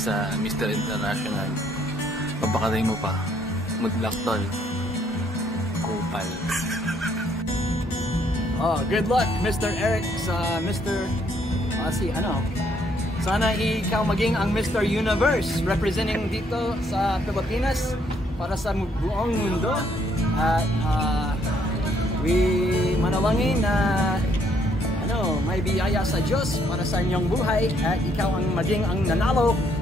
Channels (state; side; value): normal; both; correlation 0.69